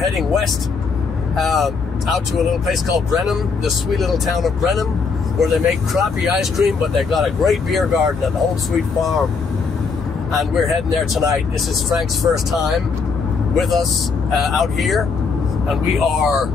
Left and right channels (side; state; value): right; quieter; 5.0 dB